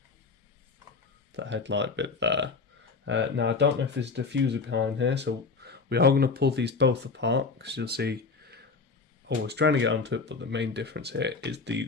headlight bit there. Now I don't know if there's a diffuser behind here, so we are going to pull these both apart, because you'll see I was trying to get onto it, but the main difference here is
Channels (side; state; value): right; quieter; 4.4 dB